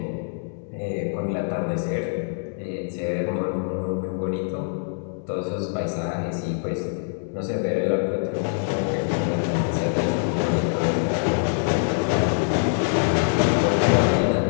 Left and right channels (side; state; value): right; silent; digital silence